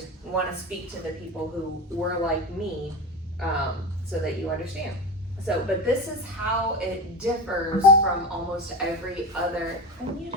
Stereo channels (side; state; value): both; normal; correlation 0.23